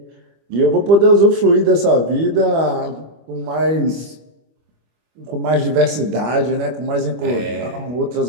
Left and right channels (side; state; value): left; late; 25 ms